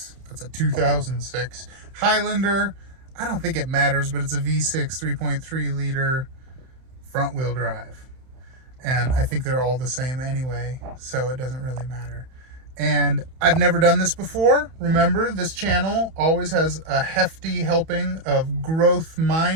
that's a 2006, Highlander. I don't think it matters, but it's a V6 3.3 liter front wheel drive. And I think they're all the same anyway, so it doesn't really matter. And I've never done this before. Remember, this channel always has a hefty helping of growth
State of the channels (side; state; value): left; late; 31 ms